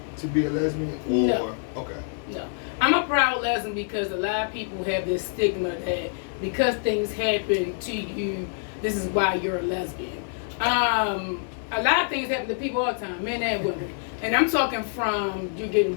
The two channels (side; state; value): right; silent; digital silence